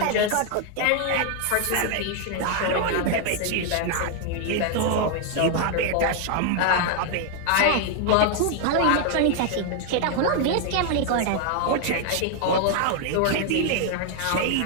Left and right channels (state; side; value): different; both; correlation 0.00